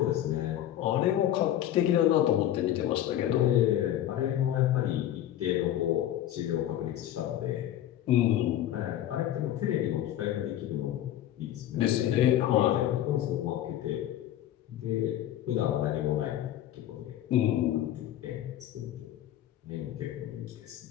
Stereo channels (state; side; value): quieter; right; 12.1 dB